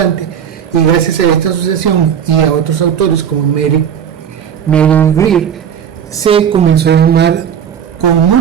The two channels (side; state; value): left; quieter; 8.3 dB